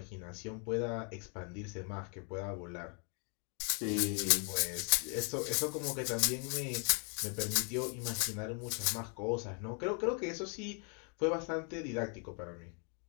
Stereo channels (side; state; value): right; quieter; 39.9 dB